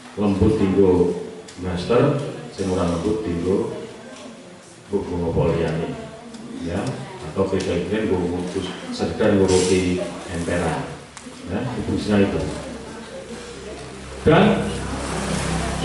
lembut tinggu plester, sing ora lembut tinggu bunga poliani, ya, atau kejadian ngurusi sekedar ngurusi emperan, ya, fungsinya itu. Dan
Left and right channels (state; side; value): identical; both; correlation 1.00